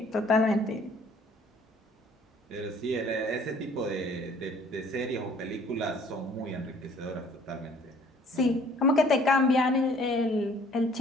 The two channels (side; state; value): both; normal; correlation 0.56